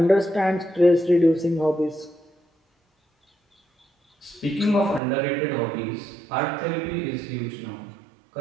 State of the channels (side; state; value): left; drops out; at 5.0 s